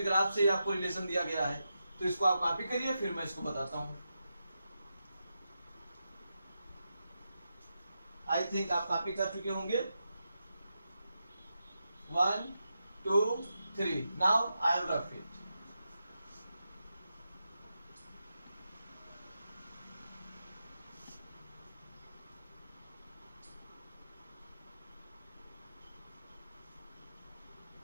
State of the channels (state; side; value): inverted; both; correlation -0.87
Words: ग्राफ से ही आपको रिलेशन दिया गया है, तो इसको आप कॉपी करिए, फिर मैं इसको बताता हूं। आई थिंक आप कॉपी कर चुके होंगे। 1 2 3, now I have rough it.